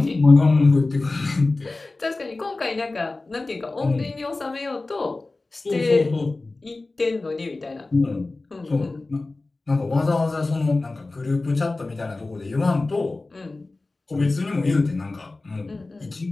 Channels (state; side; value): quieter; right; 3.3 dB